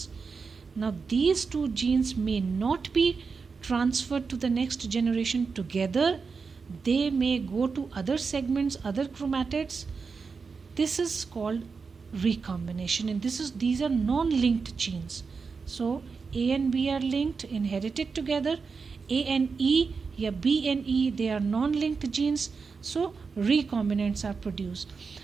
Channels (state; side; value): quieter; left; 5.0 dB